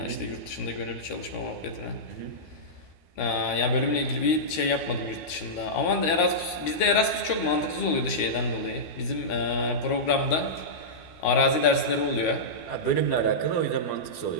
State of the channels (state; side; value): late; right; 13 ms